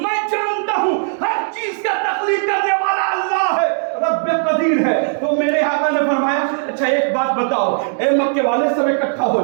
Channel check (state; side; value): silent; left; digital silence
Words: جانتا ہوں ہر چیز کا تخلیق کرنے والا اللہ ہے, رب قدیر ہے. تو میرے آقا نے فرمایا اچھا ایک بات بتاؤ, اے مکے والے سب اکٹھا ہو